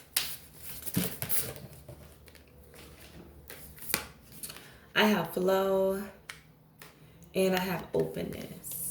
I have flow and I have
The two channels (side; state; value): both; identical; correlation 1.00